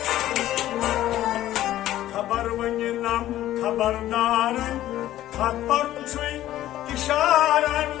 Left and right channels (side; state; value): right; quieter; 13.7 dB